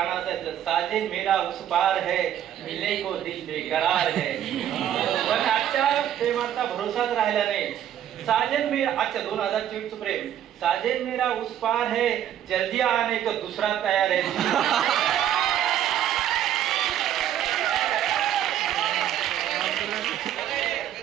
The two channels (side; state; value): left; quieter; 10.8 dB